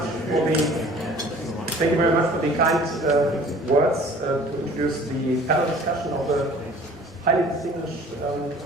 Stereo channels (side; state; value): both; normal; correlation 0.49